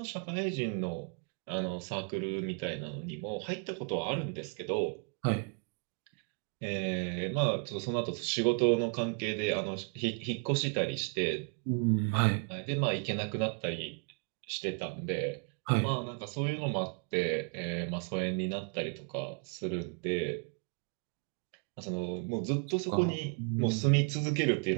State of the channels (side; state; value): left; quieter; 39.1 dB